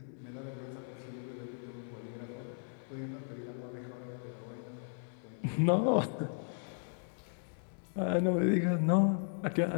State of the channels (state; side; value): silent; right; digital silence